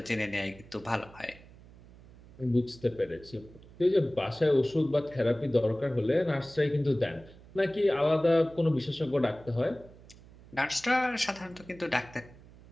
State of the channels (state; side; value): noise; right; hum, 22 dB below the sound